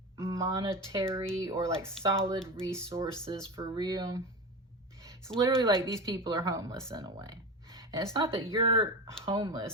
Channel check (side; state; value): both; normal; correlation 0.24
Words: monetary or like solid resources for real. It's literally like these people are homeless in a way. And it's not that you're